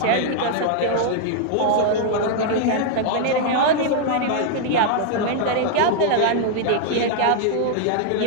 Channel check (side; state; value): both; different; correlation 0.00